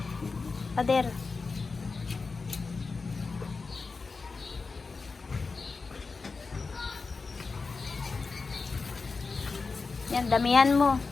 Pader. Yan, damihan mo.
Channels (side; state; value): right; quieter; 4.3 dB